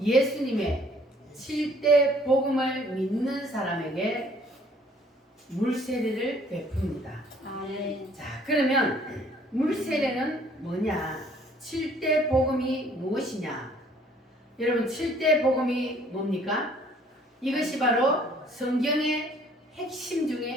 7대 복음을 믿는 사람에게 물 세례를 베풉니다. 아멘. 자, 그러면 물 세례는 뭐냐? 7대 복음이 무엇이냐? 여러분, 7대 복음이 뭡니까? 이것이 바로 성경의 핵심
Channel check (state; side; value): normal; both; correlation 0.58